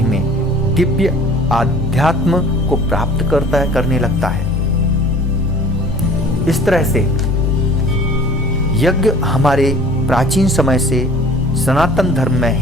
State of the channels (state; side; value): normal; both; correlation 0.47